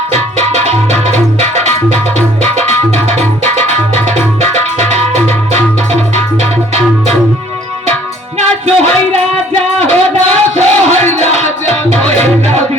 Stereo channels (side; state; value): both; normal; correlation 0.57